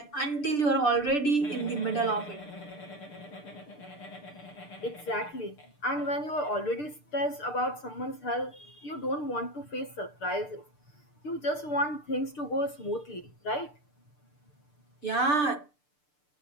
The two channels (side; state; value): right; late; 6.7 ms